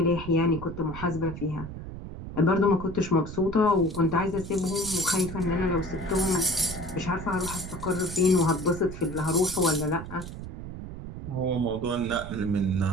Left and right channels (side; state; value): right; noise; rumble, 10 dB below the sound